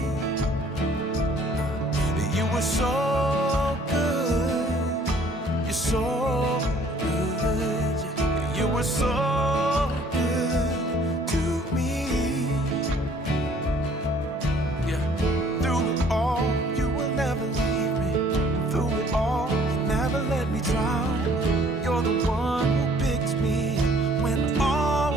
You were so good. You're so good. You were so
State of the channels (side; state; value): both; normal; correlation 0.58